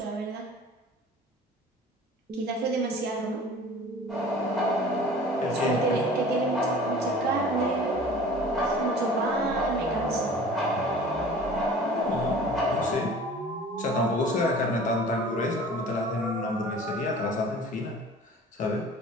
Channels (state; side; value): normal; both; correlation 0.44